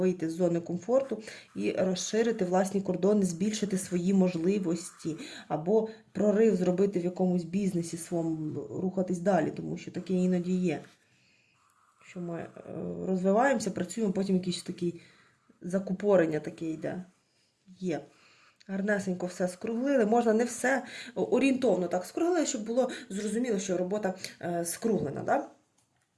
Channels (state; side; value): identical; both; correlation 1.00